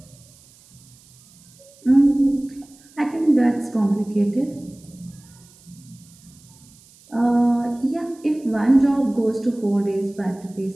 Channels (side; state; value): right; noise; hiss, 27 dB below the sound